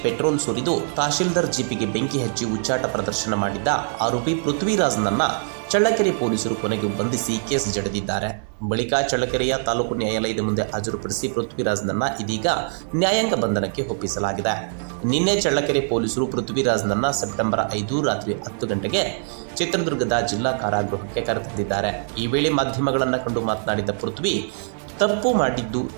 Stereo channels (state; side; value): silent; left; digital silence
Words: ಪೆಟ್ರೋಲ್ ಸುರಿದು ತಹಶೀಲ್ದಾರ್ ಜೀಪಿಗೆ ಬೆಂಕಿ ಹಚ್ಚಿ ಉಚ್ಚಾಟ ಪ್ರದರ್ಶನ ಮಾಡಿದ್ದ ಆರೋಪಿ ಪೃಥ್ವಿರಾಜ್ನನ್ನ ಚಳ್ಳಕೆರೆ ಪೊಲೀಸರು ಕೊನೆಗೂ ಬಂಧಿಸಿ ಕೇಸ್ ಜಡಿದಿದ್ದಾರೆ. ಬಳಿಕ ಚಳ್ಳಕೆರೆಯ ತಾಲೂಕು ನ್ಯಾಯಾಲಯದ ಮುಂದೆ ಹಾಜರುಪಡಿಸಿ ಪೃಥ್ವಿರಾಜ್ನನ್ನ ಇದೀಗ ನ್ಯಾಯಾಂಗ ಬಂಧನಕ್ಕೆ ಒಪ್ಪಿಸಲಾಗಿದೆ. ನಿನ್ನೆ ಚಳ್ಳಕೆರೆ ಪೊಲೀಸರು ಪೃಥ್ವಿರಾಜ್ನನ್ನ ಸೆಪ್ಟೆಂಬರ್ 5 ರಾತ್ರಿ 10 ಗಂಟೆಗೆ ಚಿತ್ರದುರ್ಗದ ಜಿಲ್ಲಾ ಕಾರಾಗೃಹಕ್ಕೆ ಕರೆತಂದಿದ್ದಾರೆ. ಈ ವೇಳೆ ಮಾಧ್ಯಮಗಳನ್ನು ಕಂಡು ಮಾತನಾಡಿದ ಪೃಥ್ವಿ, ತಪ್ಪು ಮಾಡಿದ್ದು